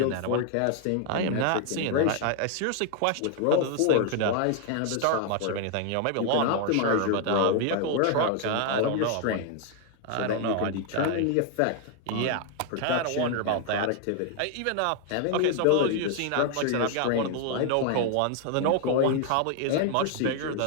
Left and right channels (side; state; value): both; different; correlation 0.00